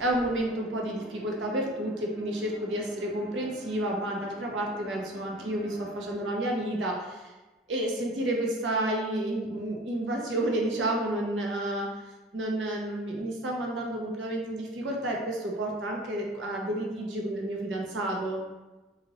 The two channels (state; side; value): normal; both; correlation 0.42